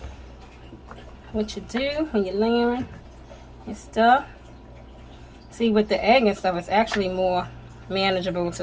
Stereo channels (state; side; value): identical; both; correlation 1.00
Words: what you do when you're layering your stuff. See, with the egg and stuff, it's actually more manageable